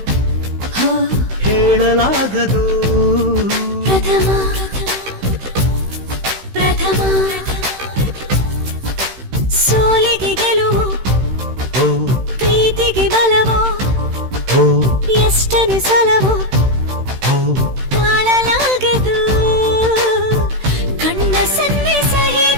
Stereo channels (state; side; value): late; left; 16 ms